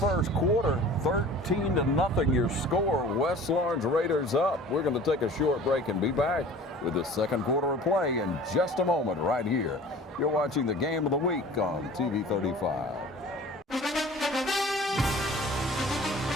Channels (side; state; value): both; normal; correlation 0.44